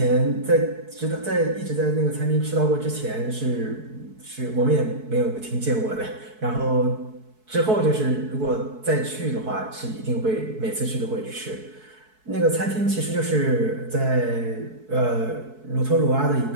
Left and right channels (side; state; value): left; late; 4.6 ms